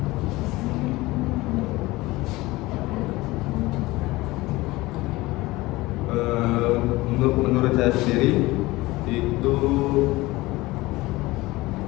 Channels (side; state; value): right; quieter; 20.1 dB